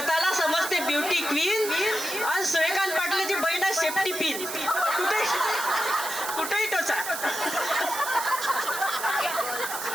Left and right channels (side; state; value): right; noise; hiss, 6 dB below the sound